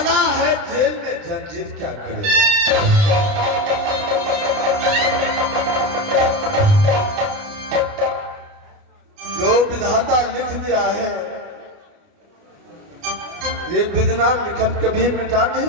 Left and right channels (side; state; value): left; late; 29 ms